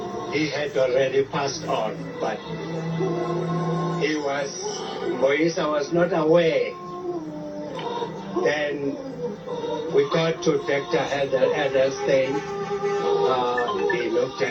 he had already passed on, but Moisa was not aware. Then we got to Dr. Edelstein. He looked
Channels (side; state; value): both; identical; correlation 1.00